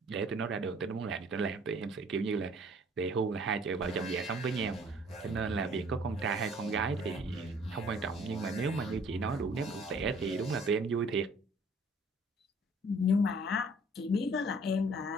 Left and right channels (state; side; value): normal; both; correlation 0.56